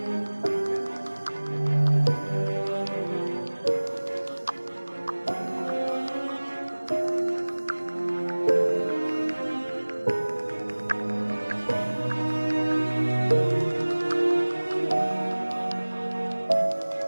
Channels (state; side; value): inverted; both; correlation -1.00